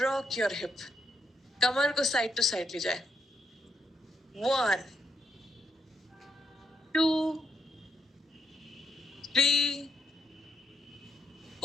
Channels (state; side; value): normal; both; correlation 0.80